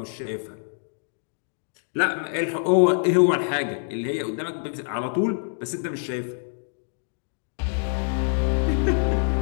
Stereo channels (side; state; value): right; silent; digital silence